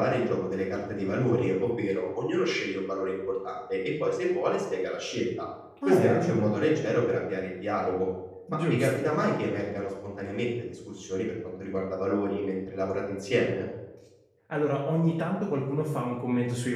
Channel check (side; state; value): both; identical; correlation 1.00